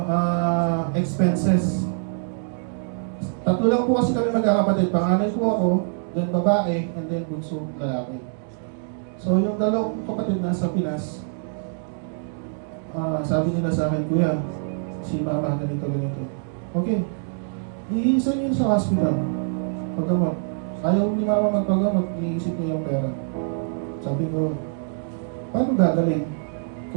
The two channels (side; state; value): left; silent; digital silence